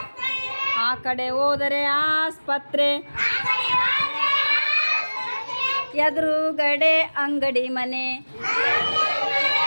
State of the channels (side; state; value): both; inverted; correlation -1.00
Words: ಆ ಕಡೆ ಹೋದರೆ ಆಸ್ಪತ್ರೆ ಎದುರುಗಡೆ ಅಂಗಡಿ ಮನೆ